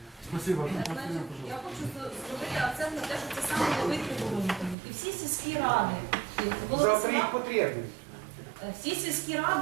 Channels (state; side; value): drops out; left; at 4.8 s